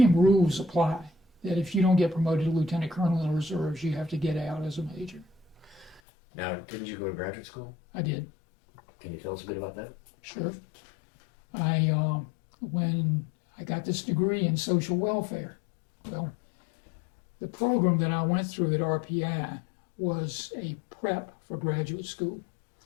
rules apply, that if you don't get promoted to lieutenant colonel in the reserves, you have to get out as a major. Now, didn't you go to graduate school? I did. Can you tell us a bit about that? Sure. When I got this degree in social welfare, well, the program that I went through at RPI was a prep for graduate school.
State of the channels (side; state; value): right; drops out; at 6.0 s